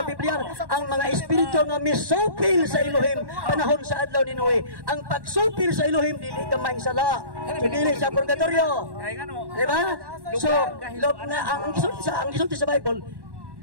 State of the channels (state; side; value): late; left; 1.1 ms